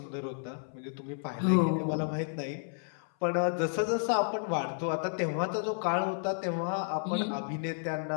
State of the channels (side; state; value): right; silent; 57 dB below the other